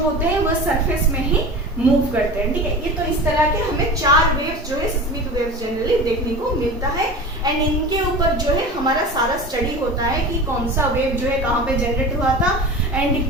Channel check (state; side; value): normal; both; correlation 0.33